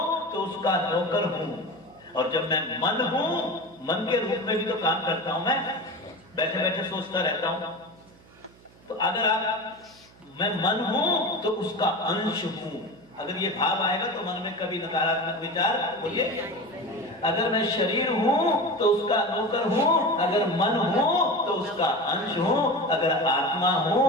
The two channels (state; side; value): noise; right; hum, 26 dB below the sound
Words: तो उसका नौकर हूं, और जब मैं मन हूं, मन के रूप में भी तो काम करता हूं, मैं बैठे बैठे सोचता रहता हूं। तो अगर आप मैं मन हूं तो उसका अंश हूं, अगर ये भाव आएगा तो मन में कभी नकारात्मक विचार बोलिए। अगर मैं शरीर हूं तो उसका नौकर हूं, अगर मन हूं तो उसका अंश हूं, अगर आत्मा हूं